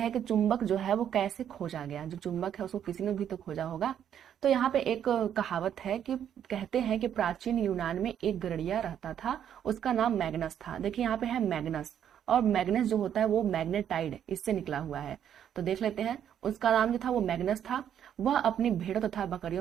कि चुंबक जो है वो कैसे खोजा गया। जो चुंबक है उसको किसी ने भी तो खोजा होगा। तो यहाँ पे एक कहावत है कि कहते हैं कि प्राचीन यूनान में एक गरुड़िया रहता था, उसका नाम मैग्नस था। देखिए यहाँ पे है मैग्नस, और मैग्नस जो होता है वो मैग्नेटाइड इससे निकला हुआ है। तो देख लेते हैं, उसका नाम जो था वो मैग्नस था। वह अपनी भेड़ों तथा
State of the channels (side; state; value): left; quieter; 9.5 dB